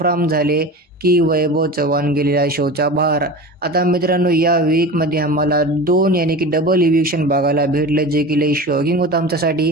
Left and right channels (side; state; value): both; normal; correlation 0.32